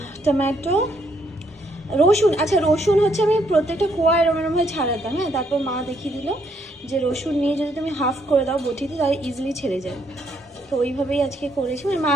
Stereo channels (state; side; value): normal; both; correlation 0.72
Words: টমেটো, রসুন। আচ্ছা, রসুন হচ্ছে আমি প্রত্যেকটা কোয়া এরমভাবে ছাড়াতাম। হ্যাঁ, তারপর মা দেখিয়ে দিল যে রসুন নিয়ে যদি তুমি হাফ করে দাও বটিতে, তাহলে ইজিলি ছেড়ে যায়। তো ওইভাবেই আজকে করেছি, মানে মা